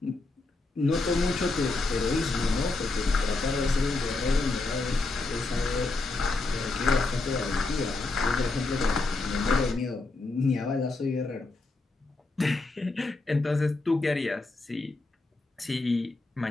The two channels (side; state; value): right; quieter; 3.3 dB